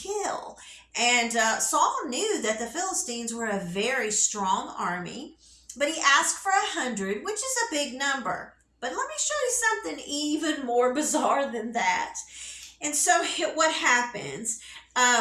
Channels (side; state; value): both; identical; correlation 1.00